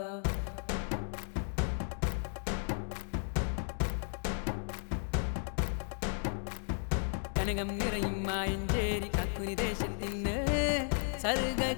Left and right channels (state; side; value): silent; right; 55 dB below the other